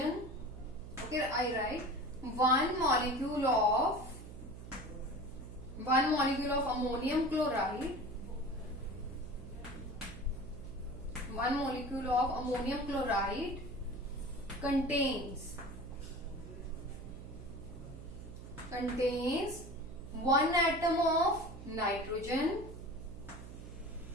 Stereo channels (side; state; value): right; noise; hum, 13 dB below the sound